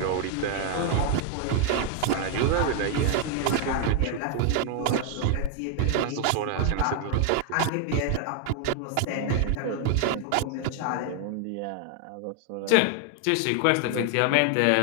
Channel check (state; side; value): different; both; correlation 0.00